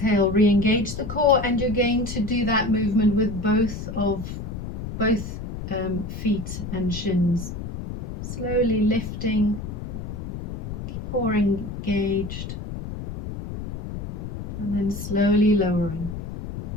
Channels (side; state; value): left; noise; rumble, 7 dB below the sound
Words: re-engage the core, and you're going to do that movement with both feet and shins. Slowly lifting, core engaged, and then slowly lowering.